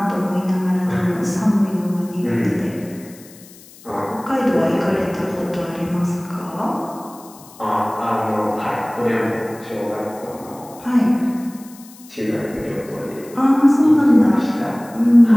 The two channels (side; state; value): left; noise; hiss, 22 dB below the sound